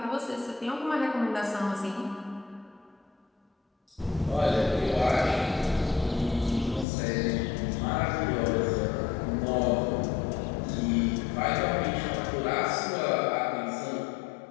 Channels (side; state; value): right; drops out; at 6.9 s